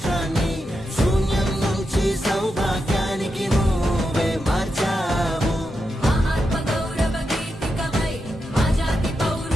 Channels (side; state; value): both; normal; correlation 0.87